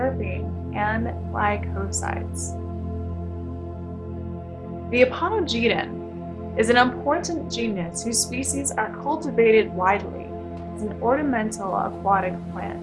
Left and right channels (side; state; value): both; identical; correlation 1.00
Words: and glycosides. The Aponogeton is an important genus whose species are cultivated widely as an ornamental aquatic plant.